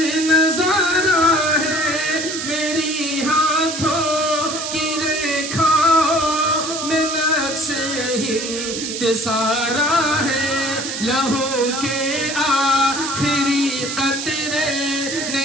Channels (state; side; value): noise; right; hiss, 5 dB below the sound